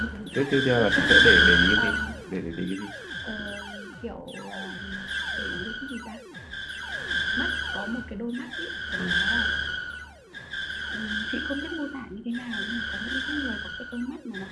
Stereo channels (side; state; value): both; identical; correlation 1.00